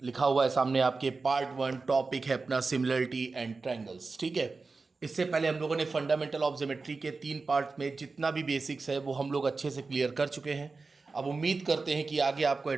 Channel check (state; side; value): quieter; left; 4.0 dB